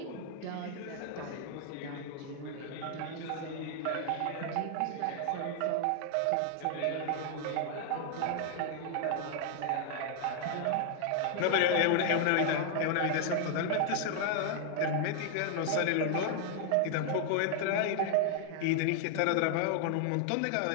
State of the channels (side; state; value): both; different; correlation 0.00